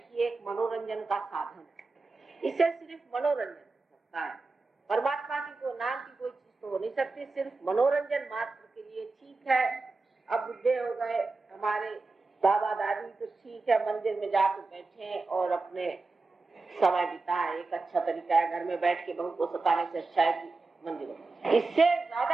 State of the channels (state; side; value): quieter; left; 3.7 dB